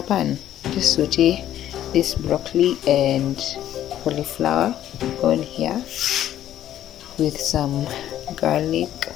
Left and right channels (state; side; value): quieter; right; 11.9 dB